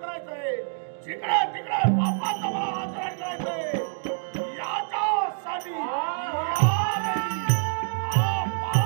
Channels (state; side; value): silent; left; 61 dB below the other